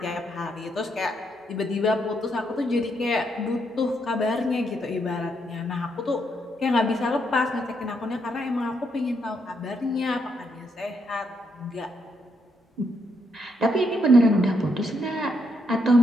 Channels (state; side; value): normal; both; correlation 0.77